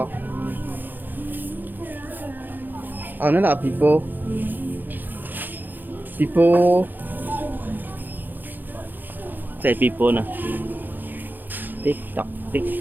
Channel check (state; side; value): late; left; 0.088 ms